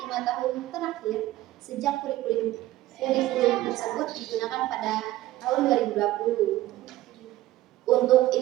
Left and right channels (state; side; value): quieter; left; 15.9 dB